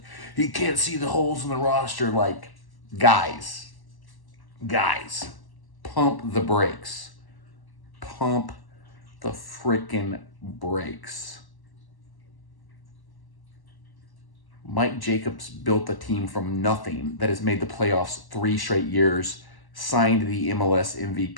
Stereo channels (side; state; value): right; late; 1.1 ms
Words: He can't see the holes in the roster. Like, guys, pump the brakes. Pump the freaking brakes. Mike Jacobs built a team from nothing that has made the playoffs 3 straight years, signed the MLS